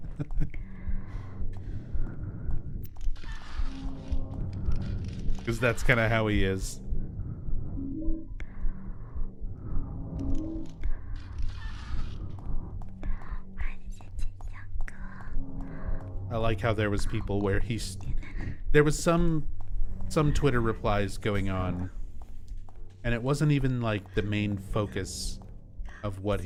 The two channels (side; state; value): both; identical; correlation 1.00